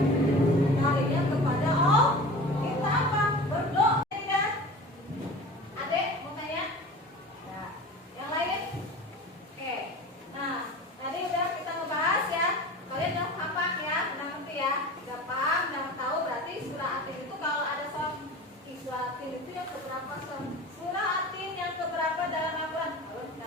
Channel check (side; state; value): both; normal; correlation 0.36